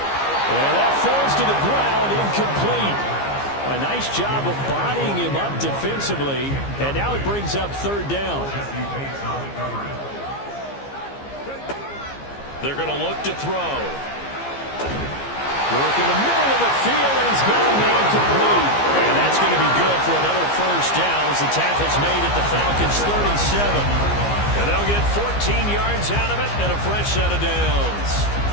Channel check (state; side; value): late; right; 15 ms